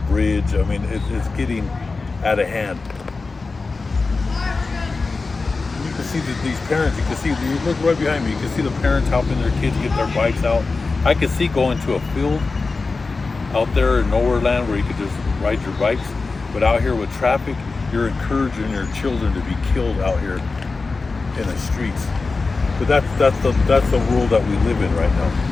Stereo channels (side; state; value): right; quieter; 4.0 dB